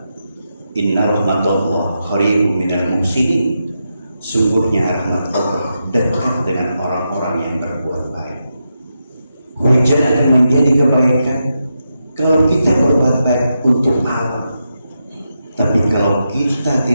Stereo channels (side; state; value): both; inverted; correlation -0.86